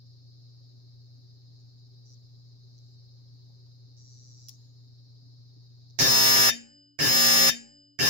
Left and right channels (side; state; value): left; late; 7.4 ms